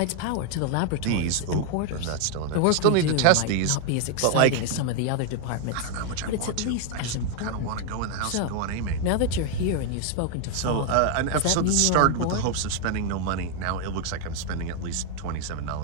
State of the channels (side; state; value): both; different; correlation 0.00